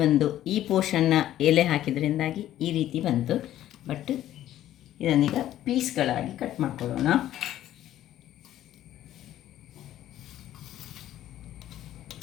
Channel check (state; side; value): quieter; right; 12.8 dB